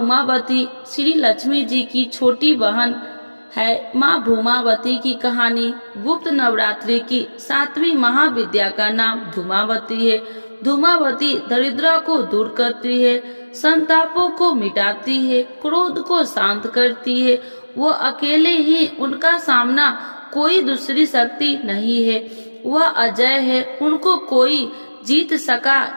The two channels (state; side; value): inverted; both; correlation -1.00